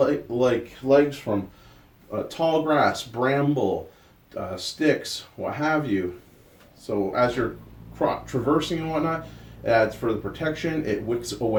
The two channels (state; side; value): identical; both; correlation 1.00